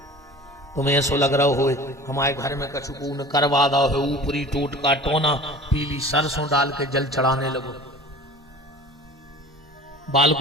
तुम्हें ऐसा लग रहा हो हमारे घर में कछु पूर्ण करवा दो है, ऊपरी टोट का टोना पीली सरसों डाल के जल चढ़ाने लगो। बाल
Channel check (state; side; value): normal; both; correlation 0.41